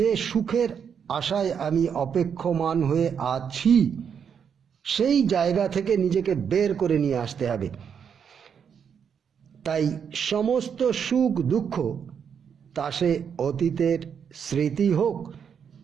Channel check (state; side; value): quieter; left; 7.4 dB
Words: সুখের আশায় আমি অপেক্ষমান হয়ে আছি সেই জায়গা থেকে নিজেকে বের করে নিয়ে আসতে হবে। তাই সমস্ত সুখ দুঃখ, তা সে অতীতের স্মৃতি হোক,